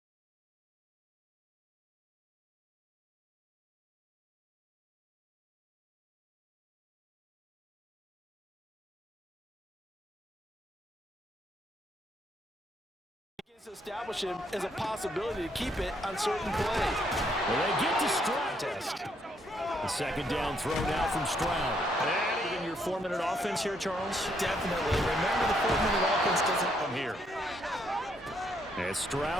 To establish him as a possibility to keep it on certain plays. Well, they get to Stroud. The second down throw now from Stroud. and in your 4-minute offense here, Charles? Definitely. Remember, the 4-minute offense doesn't come here. And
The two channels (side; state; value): both; normal; correlation 0.72